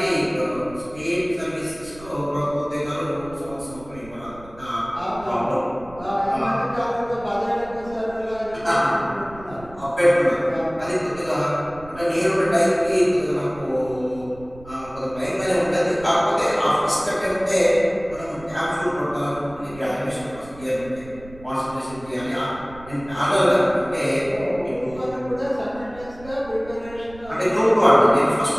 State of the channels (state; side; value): noise; right; rumble, 19 dB below the sound